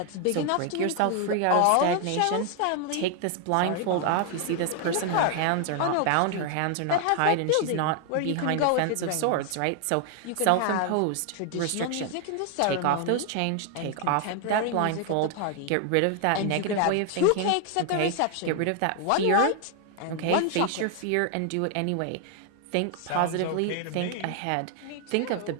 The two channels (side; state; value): both; different; correlation 0.00